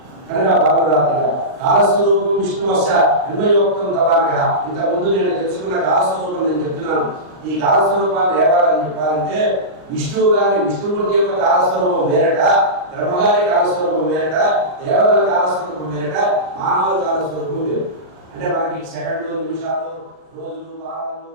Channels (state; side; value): late; left; 39 ms